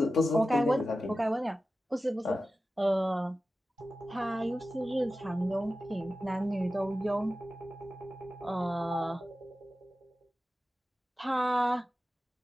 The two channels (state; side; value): normal; both; correlation 0.94